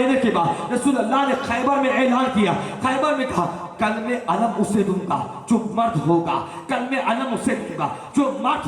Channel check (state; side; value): identical; both; correlation 1.00